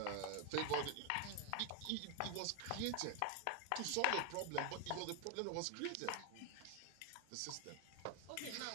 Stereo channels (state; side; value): different; both; correlation 0.01